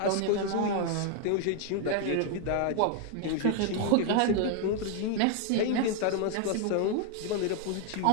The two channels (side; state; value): both; different; correlation 0.00